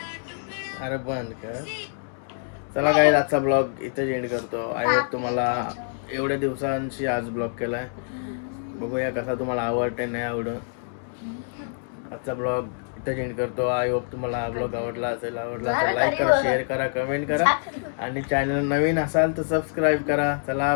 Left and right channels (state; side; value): silent; right; digital silence